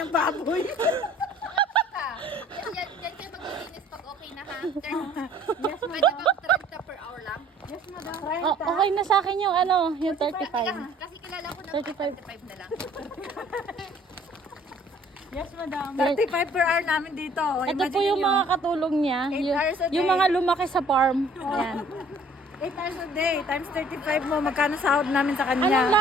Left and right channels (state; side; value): normal; both; correlation 0.55